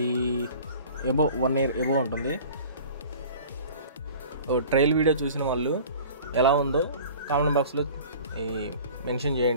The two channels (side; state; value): both; inverted; correlation -0.43